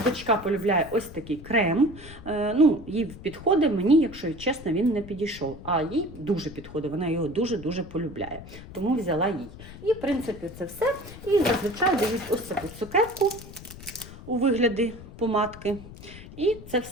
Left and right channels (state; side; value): noise; left; rumble, 15 dB below the sound